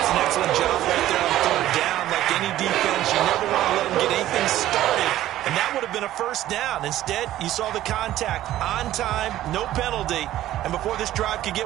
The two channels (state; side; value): quieter; left; 13.8 dB